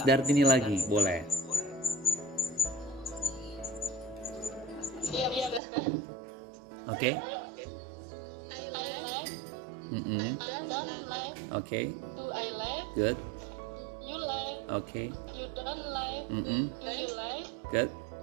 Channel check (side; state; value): left; drops out; at 5.6 s